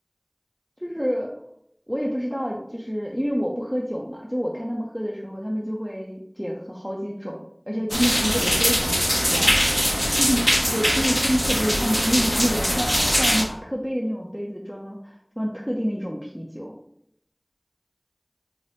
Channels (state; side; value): identical; both; correlation 1.00